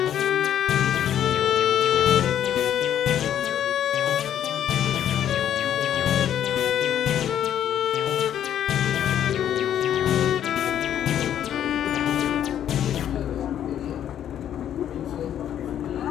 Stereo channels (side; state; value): right; quieter; 10.3 dB